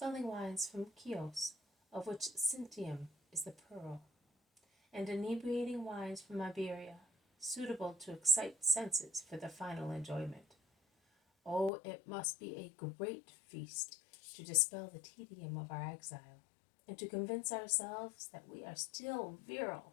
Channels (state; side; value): drops out; right; at 11.7 s